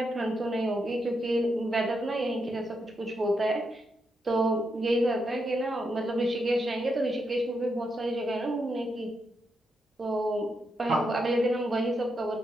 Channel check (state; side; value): normal; both; correlation 0.82